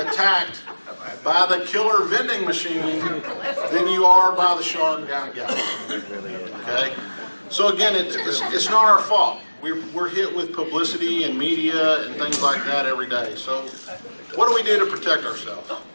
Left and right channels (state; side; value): inverted; both; correlation -1.00